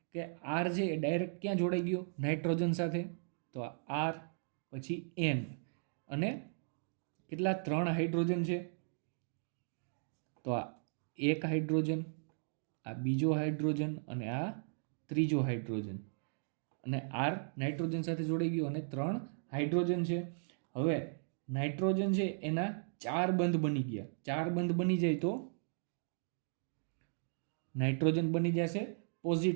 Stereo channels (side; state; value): left; silent; digital silence